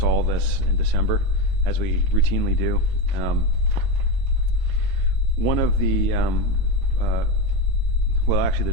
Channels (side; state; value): left; late; 22 ms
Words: all of this in December, as we routinely do. One of the well, actually,